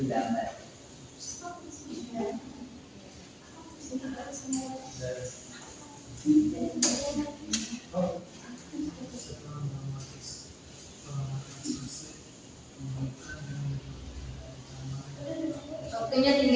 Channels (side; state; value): both; identical; correlation 1.00